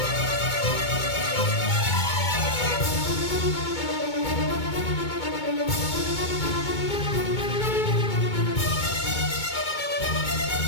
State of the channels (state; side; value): late; right; 2.2 ms